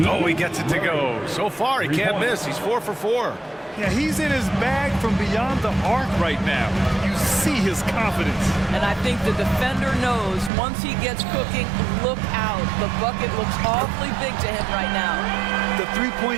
he gets it to go. So far, he can't miss. He's 4 for 4. Yeah, he's in his bag from beyond the arc right now. You see his confidence. And I think the defender knows once he gets cooking, look out. The bucket looks awfully big to him right now. The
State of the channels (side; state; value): left; drops out; at 10.5 s